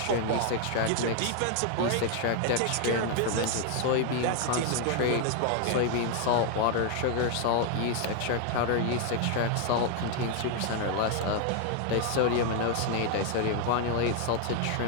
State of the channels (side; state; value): both; different; correlation 0.00